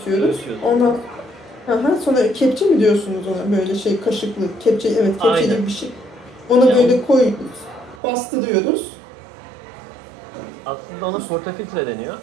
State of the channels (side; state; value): left; drops out; at 8.0 s